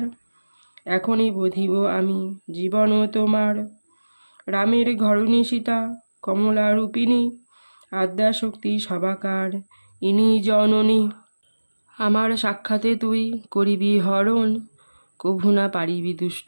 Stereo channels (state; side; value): inverted; both; correlation -1.00